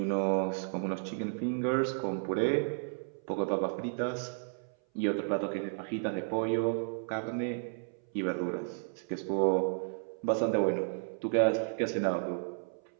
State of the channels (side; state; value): left; silent; 56 dB below the other